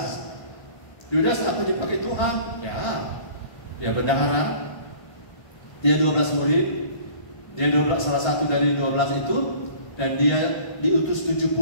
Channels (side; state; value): right; late; 1.5 ms